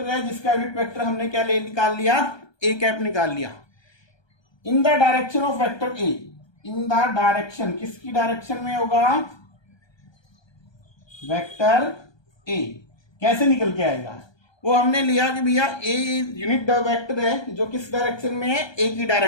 है जिसका यूनिट वेक्टर हमने क्या निकाल लिया? ए कैप निकाल लिया। In the direction of vector A, in the direction, किसकी डायरेक्शन में होगा? Vector A. कैसे निकल के आएगा? वो हमने लिया कि भैया ए यूनिट वेक्टर है जो किस डायरेक्शन में है? ए की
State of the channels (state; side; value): late; right; 1.2 ms